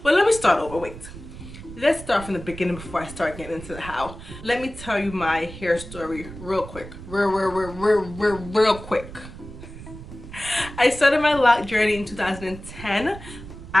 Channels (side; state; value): right; noise; rumble, 13 dB below the sound